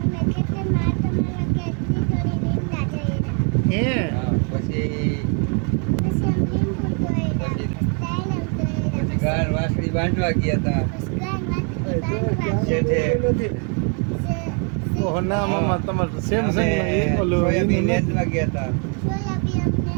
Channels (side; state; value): left; quieter; 38.2 dB